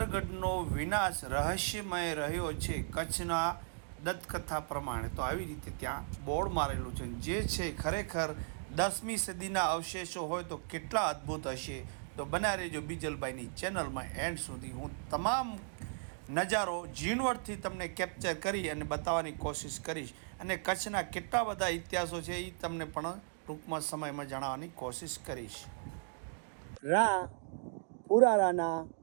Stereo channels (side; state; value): left; silent; digital silence